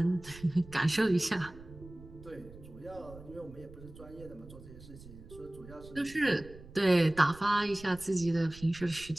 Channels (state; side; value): noise; right; rumble, 18 dB below the sound